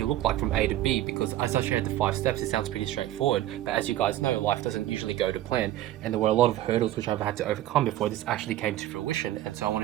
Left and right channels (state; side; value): quieter; left; 14.0 dB